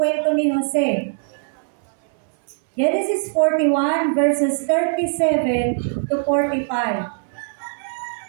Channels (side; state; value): left; silent; 65 dB below the other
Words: ni Jose. Genesis 41 verses 37 to 45.